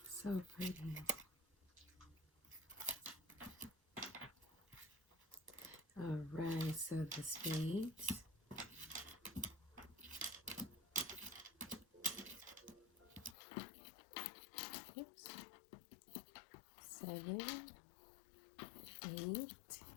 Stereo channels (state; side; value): drops out; right; at 13.4 s